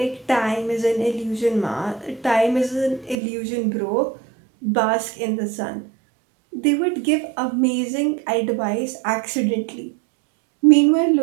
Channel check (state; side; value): drops out; left; at 3.2 s